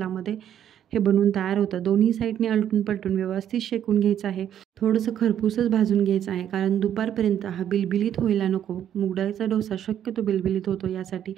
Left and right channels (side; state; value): left; quieter; 10.1 dB